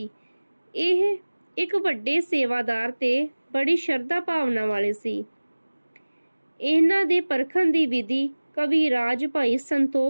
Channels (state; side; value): inverted; both; correlation -1.00